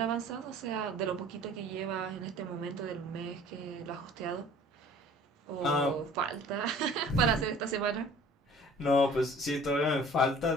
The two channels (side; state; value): both; normal; correlation 0.49